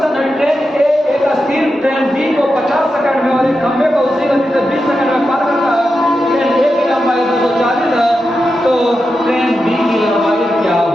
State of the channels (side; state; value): both; normal; correlation 0.89